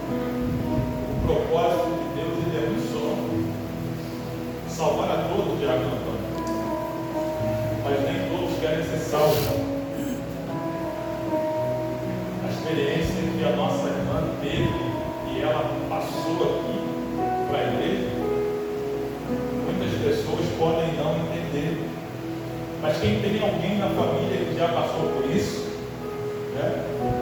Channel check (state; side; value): identical; both; correlation 1.00